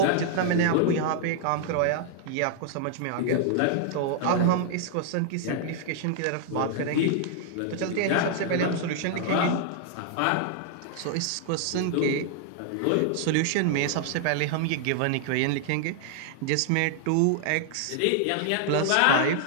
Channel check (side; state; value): both; different; correlation 0.00